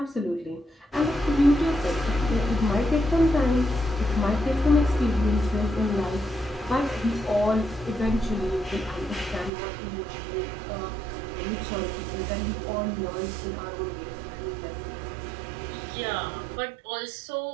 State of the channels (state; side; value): drops out; left; at 9.5 s